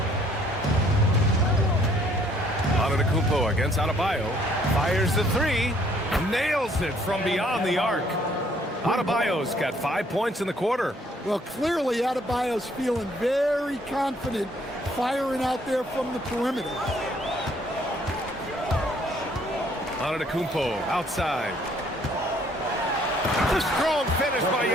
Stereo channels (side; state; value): both; normal; correlation 0.63